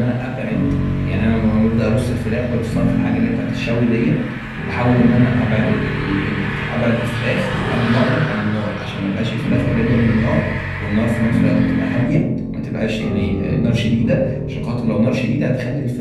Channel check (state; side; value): identical; both; correlation 1.00